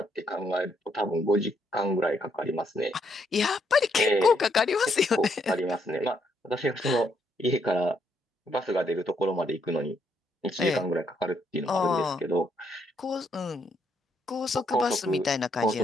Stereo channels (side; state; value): both; normal; correlation 0.74